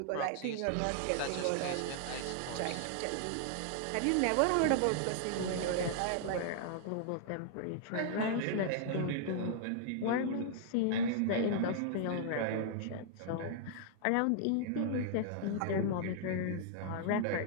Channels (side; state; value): both; different; correlation -0.01